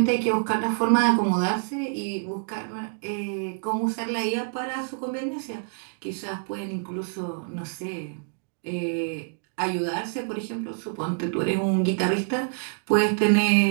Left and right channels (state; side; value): silent; left; 58 dB below the other